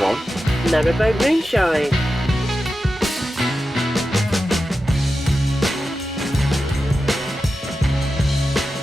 on Narrowboat Moonshine.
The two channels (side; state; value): both; normal; correlation 0.91